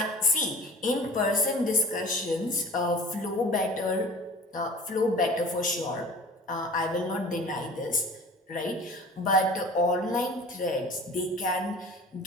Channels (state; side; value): normal; both; correlation 0.42